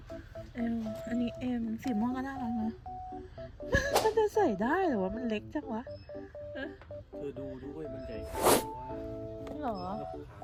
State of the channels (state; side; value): identical; both; correlation 1.00